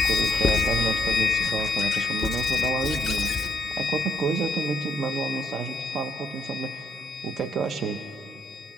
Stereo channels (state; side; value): normal; both; correlation 0.72